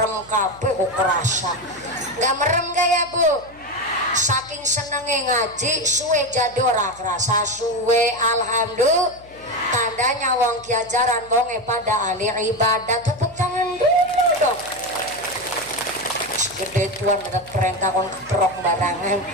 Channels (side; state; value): left; noise; hum, 24 dB below the sound